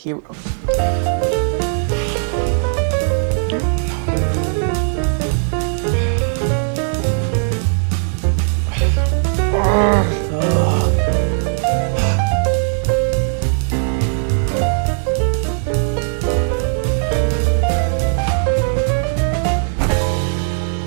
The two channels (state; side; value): silent; left; digital silence